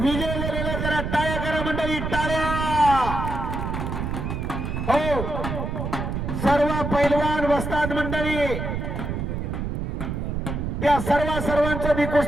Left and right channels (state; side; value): noise; right; rumble, 3 dB below the sound